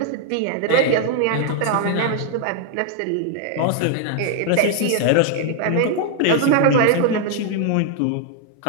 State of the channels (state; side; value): different; both; correlation 0.00